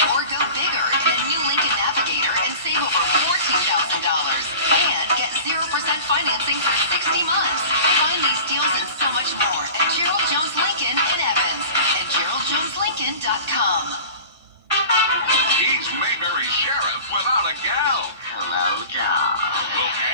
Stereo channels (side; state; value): both; inverted; correlation -0.39